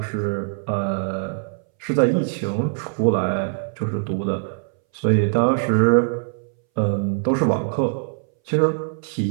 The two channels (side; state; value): left; silent; 62 dB below the other